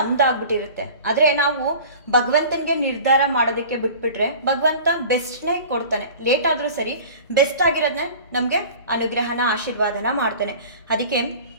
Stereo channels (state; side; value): inverted; both; correlation -0.41